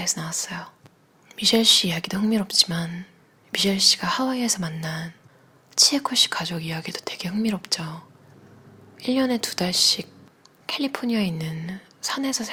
나왔어요. 미셸 씨 이야기도 흥미롭지만 미셸 씨가 하와이에서 만난 치에코 씨 가족 이야기도 되게 흥미롭죠. 1년에 2달씩 캘리포니아에 있는 산에서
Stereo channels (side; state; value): both; identical; correlation 1.00